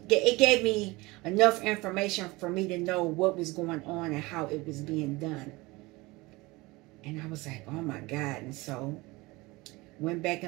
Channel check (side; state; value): left; quieter; 22.4 dB